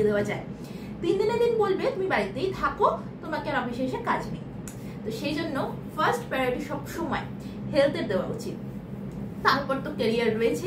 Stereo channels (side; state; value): both; identical; correlation 1.00